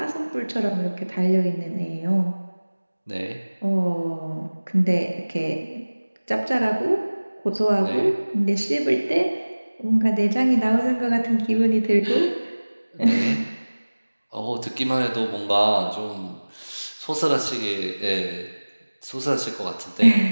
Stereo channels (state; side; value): inverted; both; correlation -1.00